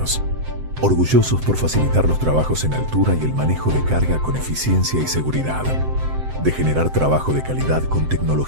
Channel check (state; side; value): late; left; 7.7 ms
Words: Orgullosos por facilitar los trabajos en altura y el manejo de carga con eficiencia y seguridad. De generar trabajo de calidad con